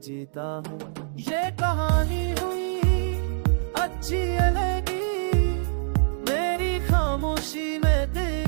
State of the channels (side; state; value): left; silent; digital silence